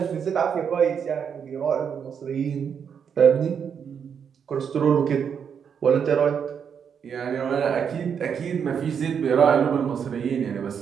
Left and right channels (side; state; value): left; quieter; 7.3 dB